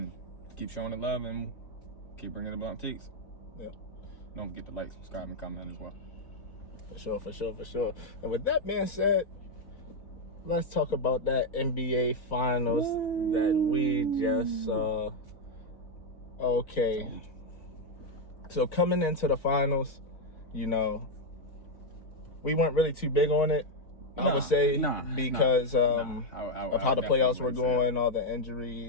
keep showing the love and keep bringing the blunt takes. Yeah. Don't forget to like, subscribe, and comment as well. For sure. And with that being said, let's talk about that NBA Finals that we just saw. Okay. So coming into the finals, we weren't really too big on it. I would say because of how the playoffs were going, all the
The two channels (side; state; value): right; late; 3.9 ms